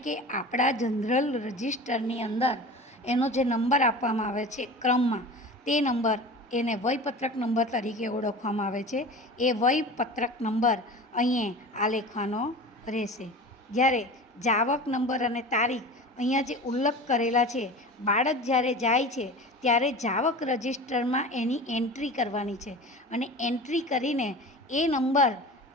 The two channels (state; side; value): normal; both; correlation 0.35